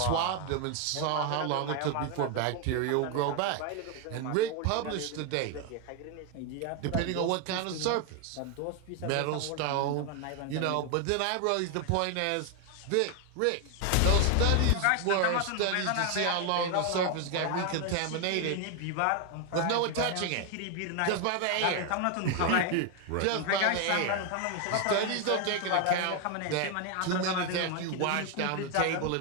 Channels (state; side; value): different; both; correlation 0.01